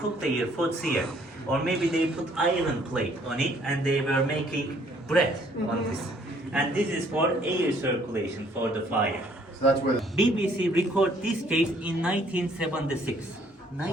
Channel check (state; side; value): normal; both; correlation 0.62